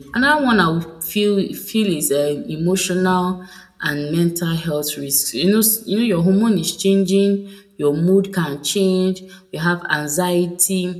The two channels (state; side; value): identical; both; correlation 1.00